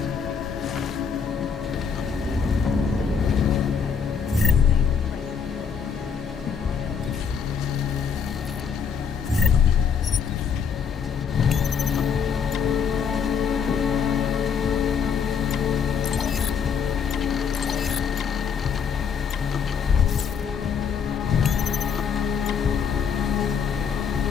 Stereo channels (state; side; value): quieter; right; 6.7 dB